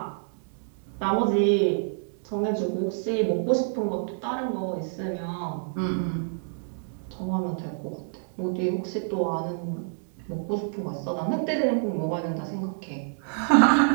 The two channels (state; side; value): silent; left; digital silence